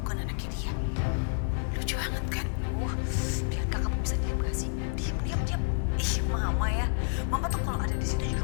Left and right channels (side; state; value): right; silent; 58 dB below the other